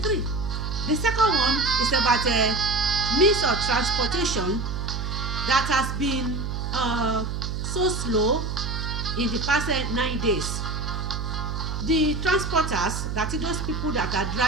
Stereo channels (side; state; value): right; noise; hum, 3 dB below the sound